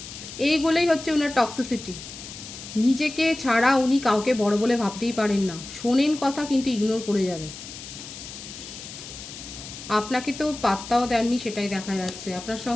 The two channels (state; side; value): noise; left; hiss, 12 dB below the sound